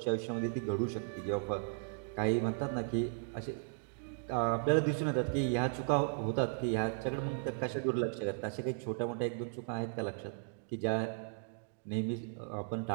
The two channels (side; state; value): left; silent; digital silence